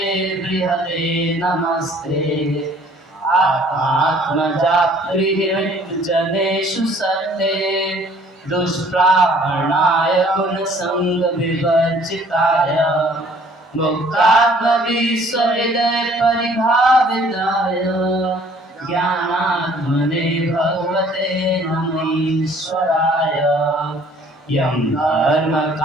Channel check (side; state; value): both; normal; correlation 0.56